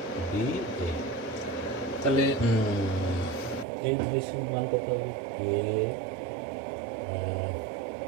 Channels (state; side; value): drops out; left; at 3.7 s